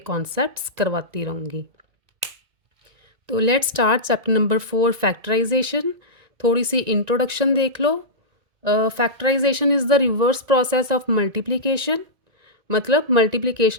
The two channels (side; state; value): left; late; 1.9 ms